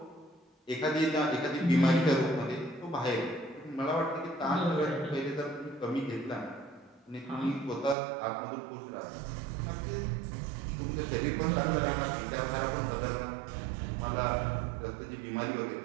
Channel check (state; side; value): drops out; left; at 8.0 s